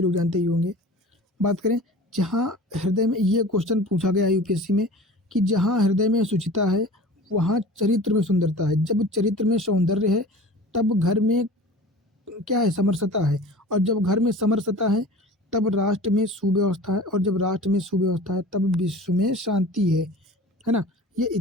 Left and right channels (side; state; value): both; normal; correlation 0.40